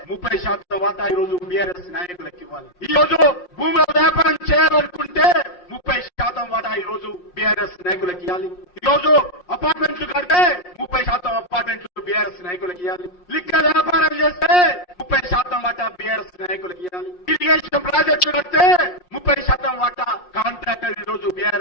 30% వాటా ఈ రోజు బీఆర్ఎస్ నాయకులకు ఇవ్వాలి. ఈ రోజు భూముల వ్యాపారం చేయాలనుకుంటే 30% వాటా ఈ రోజు బీఆర్ఎస్ నాయకులకు ఇవ్వాలి. ఈ రోజు అపార్ట్మెంట్లు కడితే 30% అపార్ట్మెంట్లు బీఆర్ఎస్ నాయకులకు ఇవ్వాలి. లిక్కర్ వ్యాపారం చేస్తే 30% వాటా బీఆర్ఎస్ నాయకులకు ఇవ్వాలి. ఇరిగేషన్ ప్రాజెక్టులు కడితే 30% వాటా కాంట్రాక్టర్ ఈ రోజు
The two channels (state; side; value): late; right; 5.6 ms